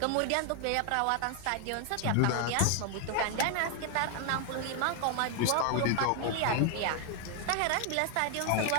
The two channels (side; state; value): both; different; correlation 0.00